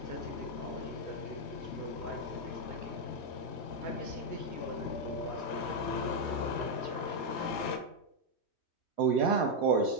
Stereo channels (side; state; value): right; late; 3.1 ms